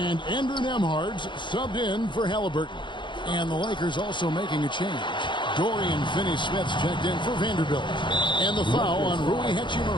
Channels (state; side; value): late; right; 0.23 ms